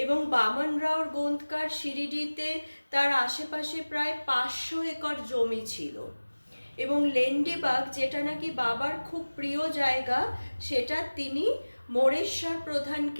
এবং বামনরাও গোন্দকার শিরিডিতে তার আশেপাশে প্রায় 500 একর জমি ছিল এবং লেন্ডিবাগ, যেটা নাকি বাবার খুব প্রিয় জায়গা, সেটা তিনি মোরেশ্বর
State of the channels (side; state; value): both; inverted; correlation -1.00